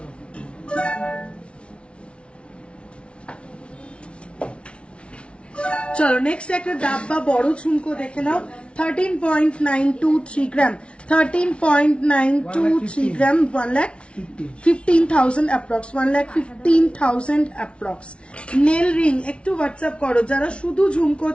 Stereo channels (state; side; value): late; right; 0.059 ms